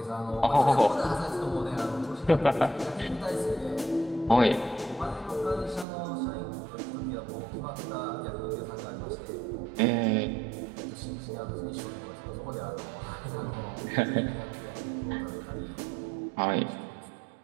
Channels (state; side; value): drops out; left; at 5.9 s